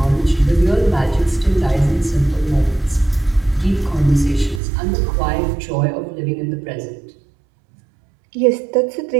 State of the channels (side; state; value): left; drops out; at 4.6 s